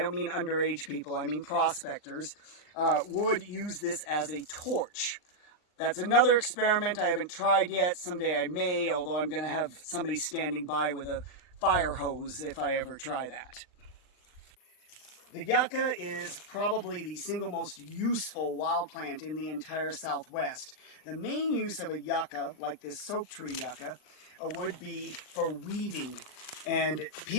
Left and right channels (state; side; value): late; right; 39 ms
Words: mean underage people, I mean prospectors, would use this as a torch. That's another experiment I haven't tried yet. Someday I may, although I'm going to have somebody standing by with a fire hose if I ever try that. The yucca is probably the single most useful wild plant in the entire Southwest. The main use of a yucca, like this soap tree yucca, would be for weaving. And